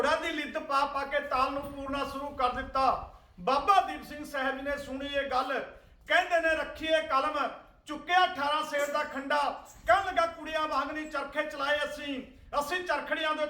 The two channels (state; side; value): identical; both; correlation 1.00